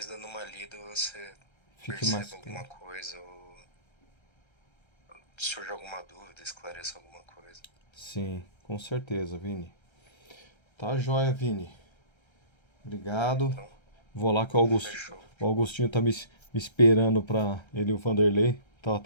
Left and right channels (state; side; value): late; right; 1.3 ms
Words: dando uma lida você Fique mais perceba alguma claro. coisa ou surja alguma dúvida, esclareça alguma coisa. Sim, com certeza, Vini. Tá joia, Vini. Obrigado. Então, Vou lá que fechou. o Augustinho tá me esperando para ele e o Vanderlei. Tava